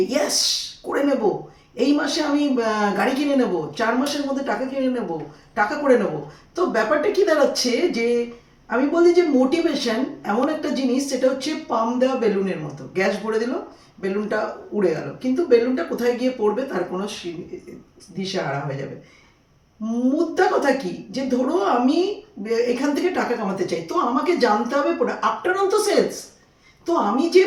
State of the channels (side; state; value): both; identical; correlation 1.00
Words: ইয়েস করে নেব, এই মাসে আমি গাড়ি কিনে নেব, 4 মাসের মধ্যে টাকা কিনে নেব, টাকা করে নেব। তো ব্যাপারটা কি দাঁড়াচ্ছে যে আমি বলি যে মোটিভেশন এমন একটা জিনিস, সেটা হচ্ছে পাম দেওয়া বেলুনের মতো। গ্যাস ভরে দিল, বেলুনটা উড়ে গেল, কিন্তু বেলুনটা কোথায় গিয়ে পড়বে তার কোনো দিশেহারা হয়ে যাবে। মুদ্রা কথা কি, যে ধরো আমি এখান থেকে টাকা কামাতে চাই, তো আমাকে জানতে হবে আফটার অল তো সেলস। তো আমি যে